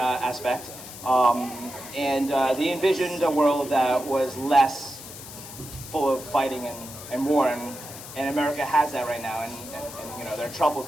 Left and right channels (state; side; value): noise; left; hiss, 13 dB below the sound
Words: They envisioned a world that was less full of fighting and war, and America has that right now, and they're